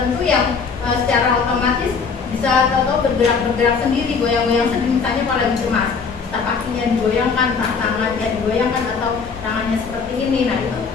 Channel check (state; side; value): quieter; right; 5.4 dB